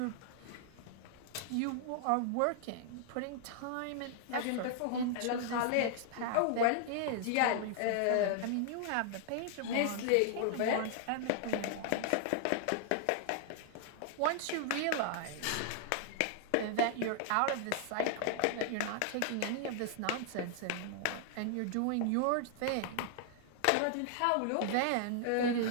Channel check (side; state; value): both; different; correlation 0.00